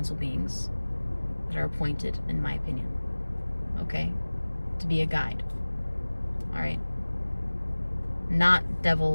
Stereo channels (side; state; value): both; inverted; correlation -1.00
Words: beings that are appointed, in my opinion, okay, to be a guide. All right? Not